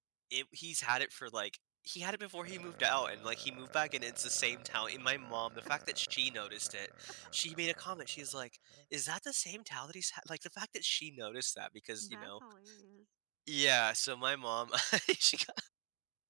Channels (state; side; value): quieter; left; 32.7 dB